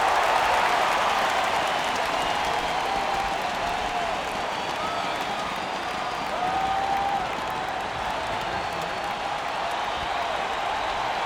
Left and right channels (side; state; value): both; identical; correlation 1.00